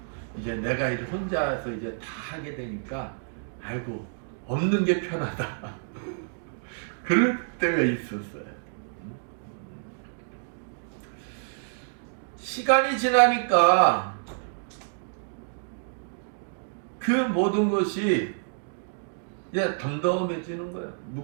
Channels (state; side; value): silent; left; digital silence